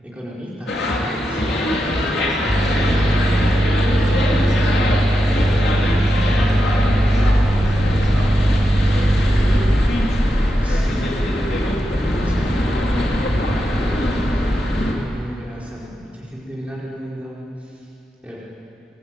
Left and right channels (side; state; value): both; normal; correlation 0.87